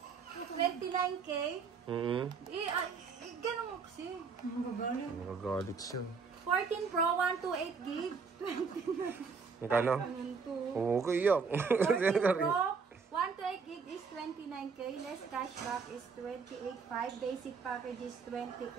29K. Ganun mo kasi. Magagalit siya. 14 Pro, 128 gig. Magkano? Okay, yak. 14 Pro, 128 gig is 29K. Less cashback is 28.5. Basic package is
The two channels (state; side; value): quieter; left; 5.3 dB